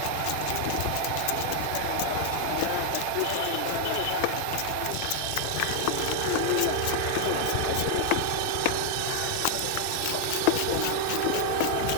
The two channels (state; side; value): different; both; correlation 0.00